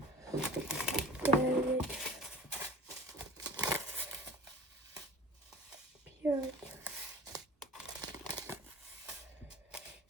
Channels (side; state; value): both; normal; correlation 0.41